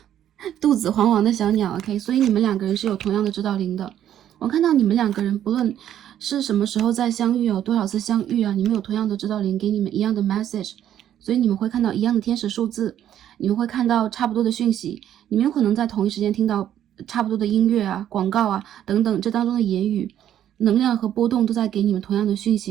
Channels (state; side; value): quieter; left; 10.9 dB